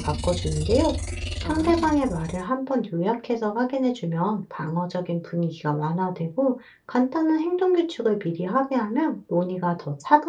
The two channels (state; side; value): identical; both; correlation 1.00